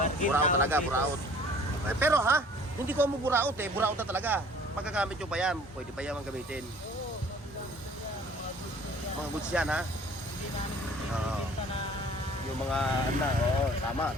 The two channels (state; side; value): normal; both; correlation 0.51